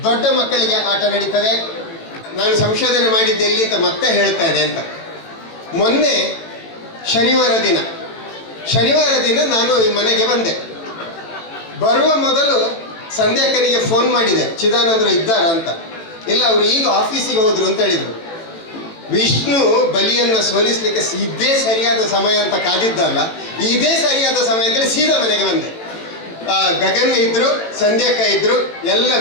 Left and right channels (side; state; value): right; late; 18 ms